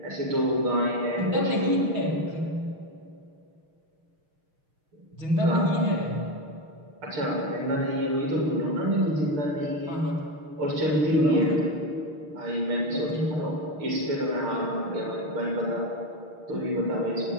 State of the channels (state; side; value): late; left; 6.5 ms